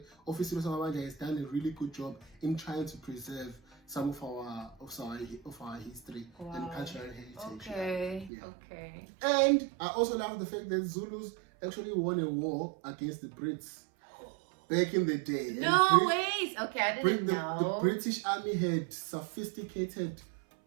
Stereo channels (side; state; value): left; drops out; at 8.3 s